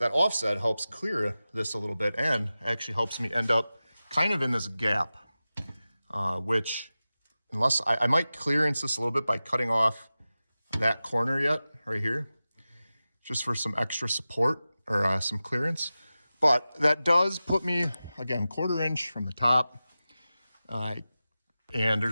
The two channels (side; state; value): both; inverted; correlation -0.95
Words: offset helps clear this a little bit and actually helps me end up kind of in this gap, which, unless I might clearance this a little bit by cutting off that corner yet, right here, just for some extra support or some clearance. But that does put me, again, ¼ inch from the top. And